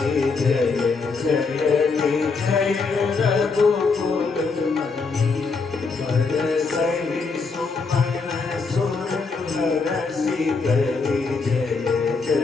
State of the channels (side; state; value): right; quieter; 4.5 dB